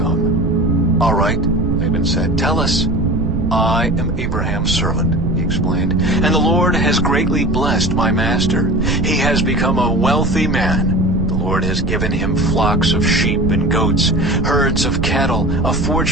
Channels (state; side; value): noise; right; rumble, 1 dB below the sound